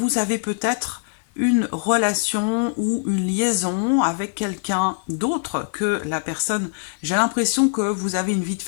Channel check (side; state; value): right; silent; 64 dB below the other